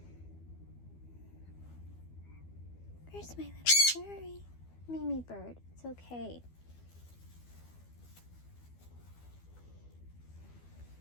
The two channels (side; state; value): right; late; 12 ms